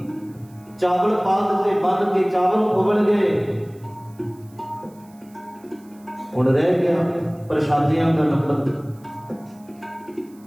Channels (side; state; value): right; noise; hiss, 30 dB below the sound